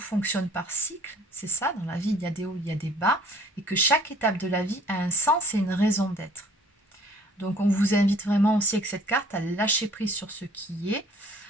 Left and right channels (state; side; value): normal; both; correlation 0.54